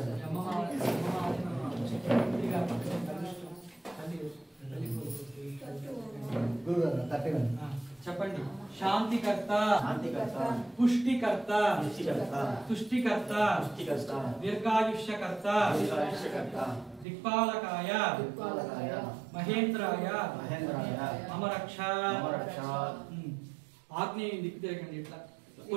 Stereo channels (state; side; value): drops out; left; at 17.1 s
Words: చెప్పండి. శాంతికర్త, పుష్టికర్త, తుష్టికర్త, దీర్ఘాయుష్యకర్త, దిక్పాలకాయ, మహేంద్రాయ, మమ రక్ష. ఆగ్నేయం దిక్కు తిరగండి. ఇట్లా